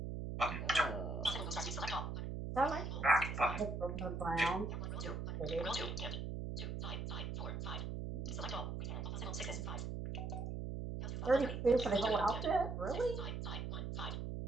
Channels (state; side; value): noise; right; hum, 4 dB below the sound